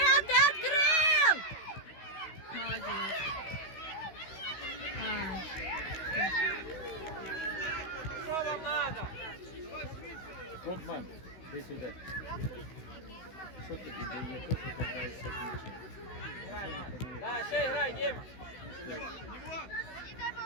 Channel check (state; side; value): late; right; 16 ms